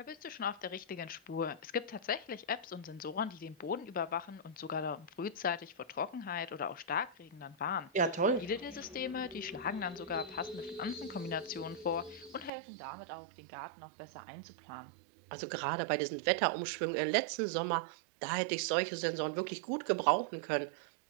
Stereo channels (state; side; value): drops out; left; at 12.5 s